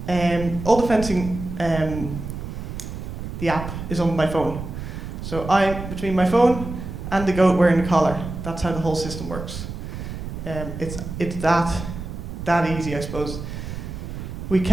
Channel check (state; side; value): noise; right; rumble, 8 dB below the sound